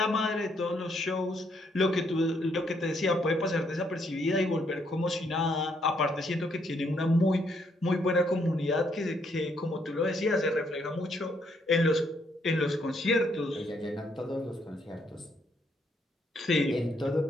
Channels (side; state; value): both; normal; correlation 0.72